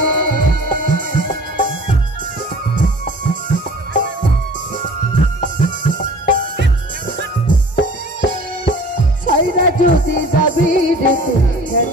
সাইরা যদি যাবি রে তুই কেন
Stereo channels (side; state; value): both; normal; correlation 0.46